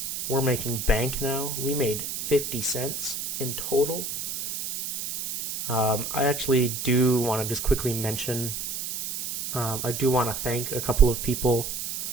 We're making bank now. We made 50 cents in total. I actually do want to just quickly mention, I do want to thank a couple of people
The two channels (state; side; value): noise; right; hiss, 5 dB below the sound